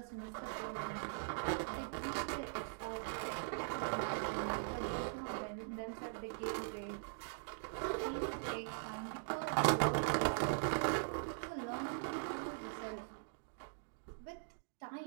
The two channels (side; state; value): left; silent; digital silence